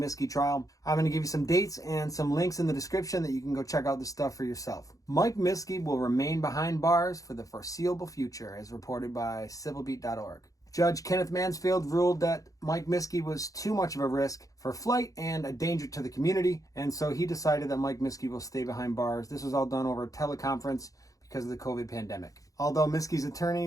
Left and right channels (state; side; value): late; right; 0.17 ms